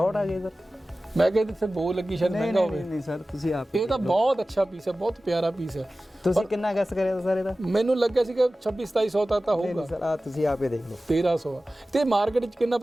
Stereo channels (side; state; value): both; normal; correlation 0.96